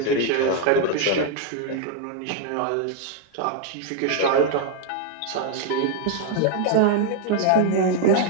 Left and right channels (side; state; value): both; different; correlation 0.01